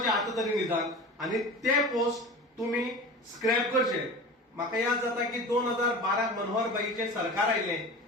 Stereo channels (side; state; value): both; normal; correlation 0.33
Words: आतां तरी निदान आनी ते पोस्ट तुमी स्क्रॅप करचे. म्हाका याद जाता की 2012 मनोहर भाईचे सरकार आयले